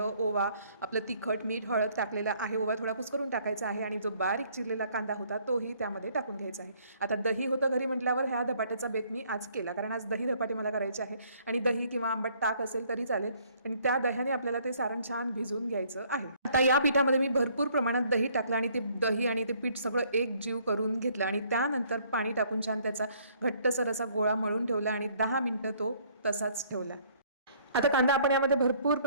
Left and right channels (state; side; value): inverted; both; correlation -0.62